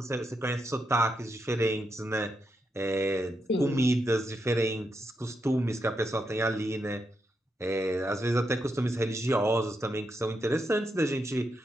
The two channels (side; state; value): both; normal; correlation 0.83